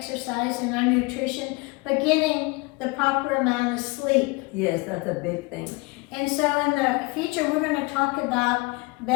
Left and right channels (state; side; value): quieter; right; 25.4 dB